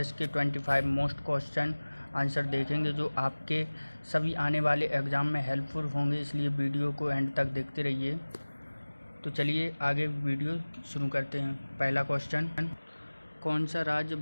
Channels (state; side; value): inverted; both; correlation -1.00